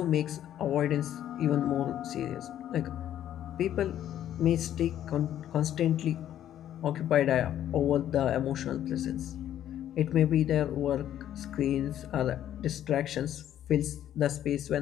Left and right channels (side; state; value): right; quieter; 11.3 dB